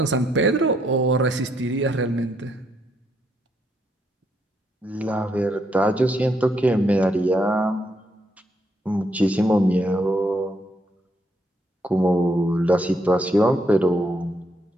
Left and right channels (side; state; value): both; normal; correlation 0.75